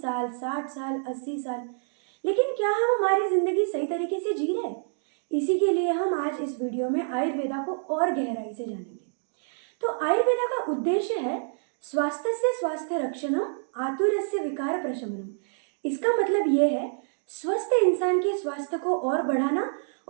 साल, 60 साल, 80 साल। लेकिन क्या हम हमारी जिंदगी सही तरीके से जी रहे हैं? इसी के लिए हम आज इस वीडियो में आयुर्वेदा को और गहराई से जानेंगे। तो आयुर्वेदा का उद्देश्य है स्वास्थ्य स्वास्थ्य रक्षणम आतुरस्य विकार प्रशमनम। इसका मतलब ये है स्वस्थ इंसान के स्वास्थ्य को और बढ़ाना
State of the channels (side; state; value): left; silent; digital silence